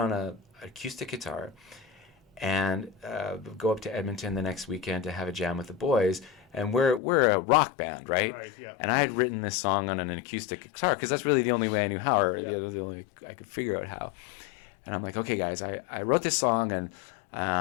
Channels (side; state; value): right; drops out; at 7.0 s